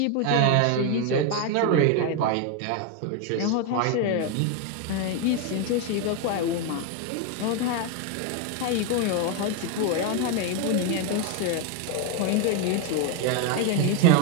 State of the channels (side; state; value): both; different; correlation 0.01